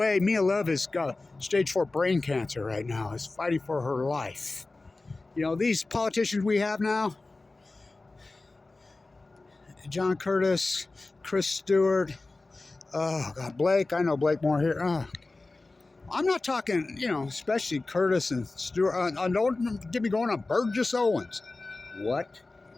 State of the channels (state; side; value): quieter; right; 3.3 dB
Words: Mia Love has got stage 4 brain cancer right now, is fighting for her life. You know, these politicians we have now, John Curtis, Chris Stewart, oh God, Blake, I know Blake more here. I'm not talking, you know, especially Curtis and Stewart. Don't get me going on Burgess Owens. What?